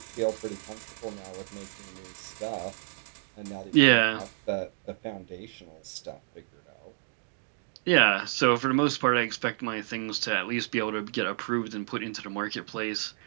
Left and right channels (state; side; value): silent; left; digital silence